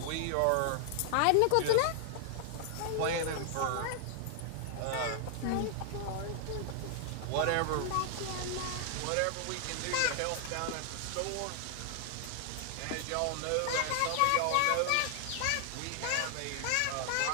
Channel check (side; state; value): both; different; correlation 0.00